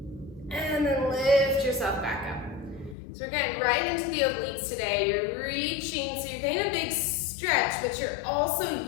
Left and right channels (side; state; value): right; drops out; at 3.0 s